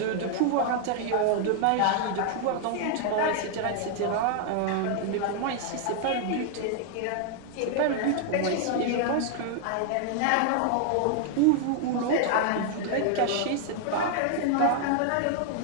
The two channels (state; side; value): different; both; correlation 0.00